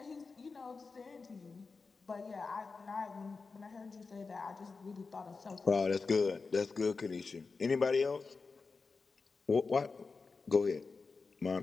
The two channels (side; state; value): right; quieter; 4.4 dB